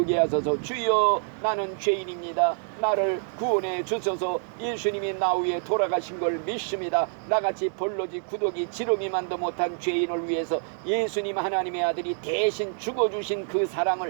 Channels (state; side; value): silent; left; 60 dB below the other